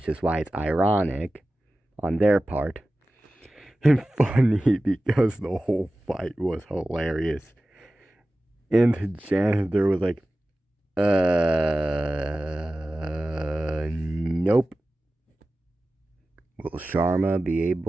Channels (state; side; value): normal; both; correlation 0.95